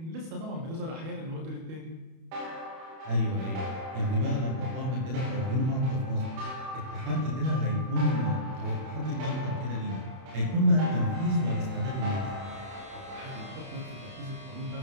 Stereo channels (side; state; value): left; late; 31 ms